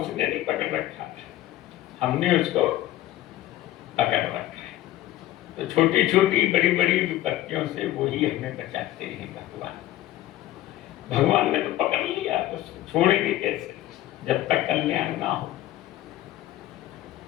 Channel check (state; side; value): quieter; right; 14.5 dB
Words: नहीं पकड़ रखा था, हमने उसको पकड़ रखा है। तो छोटी छोटी बड़ी बड़ी विपत्तियों से वही हमें बचाते हैं भगवान। भगवान ने तो पकड़ लिया, तो छोड़ेंगे कैसे जब तक कल्याण ना हो।